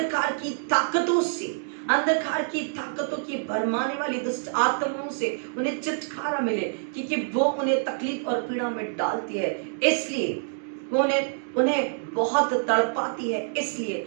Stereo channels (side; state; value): left; silent; digital silence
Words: की ताकतों से, अंधकार की ताकतों की भरमाने वाली दुष्ट आत्माओं से उन्हें छुटकारा मिले, क्योंकि वो उन्हें तकलीफ और पीड़ा में डालती है, इसलिए वो उन्हें बहुत तड़पाती है, इसलिए